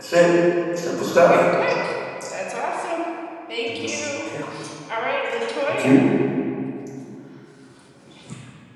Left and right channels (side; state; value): both; identical; correlation 1.00